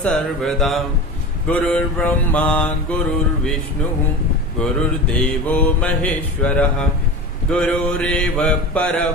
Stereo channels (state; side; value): normal; both; correlation 0.30